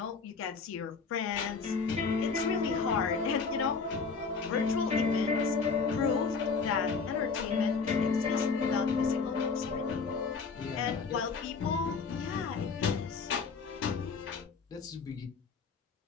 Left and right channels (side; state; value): right; quieter; 5.0 dB